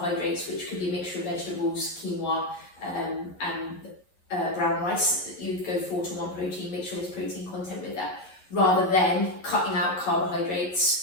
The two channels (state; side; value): late; right; 11 ms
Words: which could be a mixture of vegetables, quinoa, and brown rice, you would go 4 to 1 protein, make sure there's protein content with that, rather than cutting out